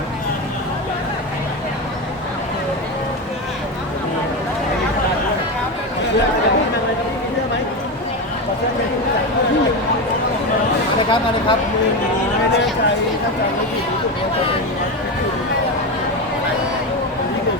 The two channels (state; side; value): normal; both; correlation 0.16